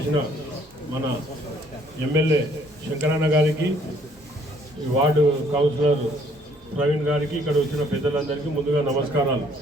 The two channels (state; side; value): normal; both; correlation 0.63